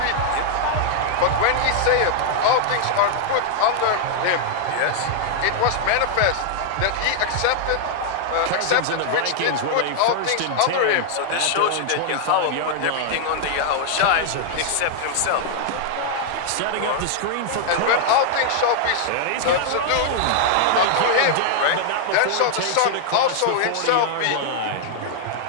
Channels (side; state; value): both; different; correlation -0.01